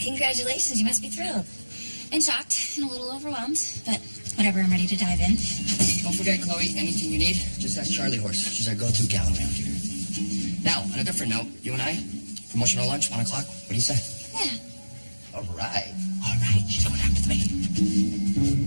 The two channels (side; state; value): both; inverted; correlation -1.00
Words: Congratulations, you must be thrilled. And shocked and a little overwhelmed, but Whatever, I'm ready to dive in. Don't forget, Chloe, anything you need, just ask Charlie Horse. She's our go-to gal around here. Now, on a different note, you and I, promotional lunch, 1 o'clock. What do you say? yeah. All right. She's going out with me.